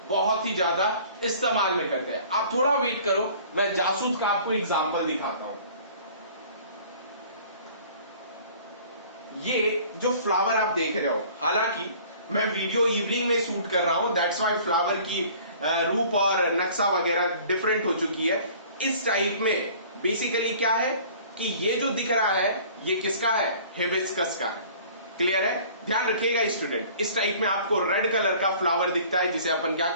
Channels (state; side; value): inverted; both; correlation -0.49